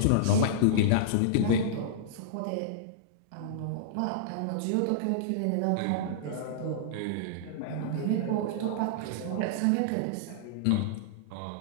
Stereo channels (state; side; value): different; both; correlation -0.02